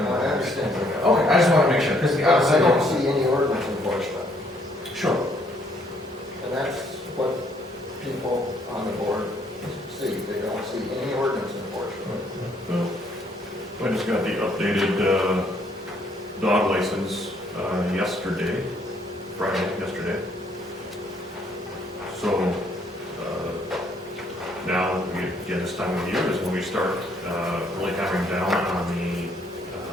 understand. Okay, I just want to make sure, because I don't see any ordinance enforcement. Sure. And that's what people on the board see. They don't see any ordinance enforcement. I just got the updated dog license yesterday, yesterday. So now, again, this time of year is when we start really hammering down on the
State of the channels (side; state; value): both; normal; correlation 0.67